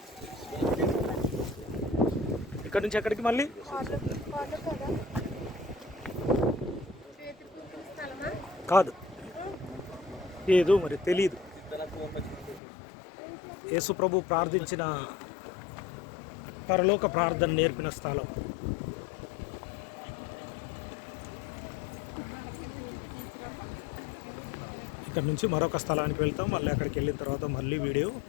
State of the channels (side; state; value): right; drops out; at 12.6 s